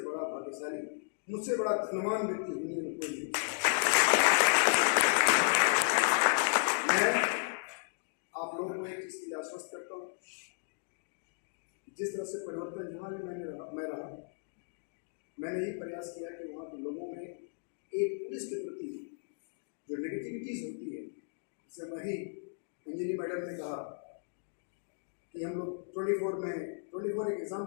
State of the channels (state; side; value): silent; right; digital silence